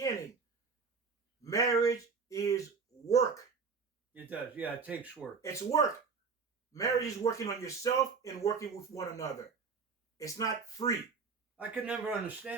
Marriage is work. It does, yeah. It takes work. It's work. Marriage is working on yourself and working with one another. It's not free. I could never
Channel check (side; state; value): left; quieter; 5.2 dB